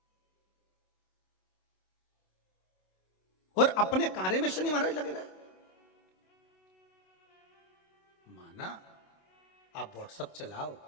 और अपने कार्य में शनि महाराज लगे रहे। माना आप व्हाट्सएप चलाओ,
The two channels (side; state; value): right; late; 27 ms